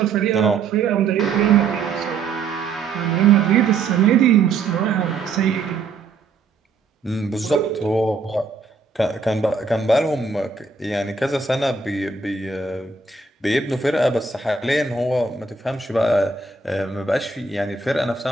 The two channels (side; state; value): left; quieter; 4.5 dB